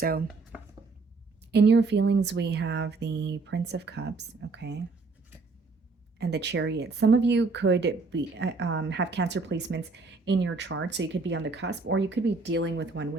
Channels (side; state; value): left; quieter; 4.0 dB